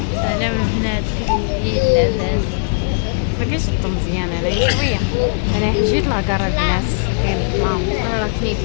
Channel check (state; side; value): silent; right; digital silence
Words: سلام البنات، كيف لاباس؟ ما كاينش الضو مزيان هنايا شويه. انا حجيت لاكار البنات كاين الظلام. راه كيف